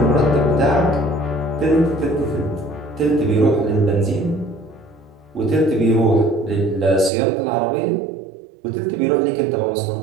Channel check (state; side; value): drops out; left; at 7.1 s